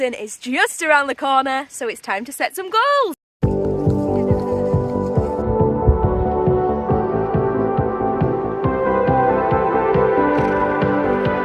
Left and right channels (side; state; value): both; identical; correlation 1.00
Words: is just around the corner, so it's time to set some goals.